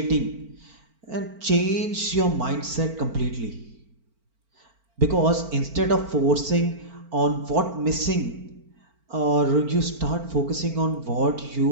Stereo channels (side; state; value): left; late; 4.4 ms